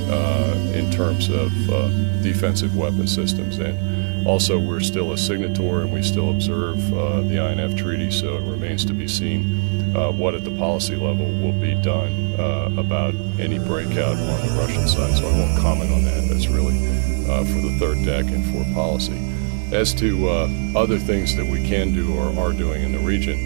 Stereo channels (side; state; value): left; silent; digital silence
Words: terms of defensive weapon systems. And also, we're still a signatory and we still observe the INF Treaty, so it remains to be seen what at the policy level will be done about any breakout on the Russian side. So I won't comment on that. That's really for the third deck and for policy. As to other things that we can do or are doing in the